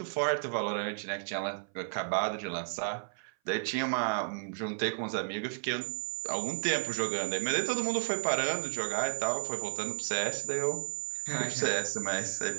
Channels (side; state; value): left; silent; 56 dB below the other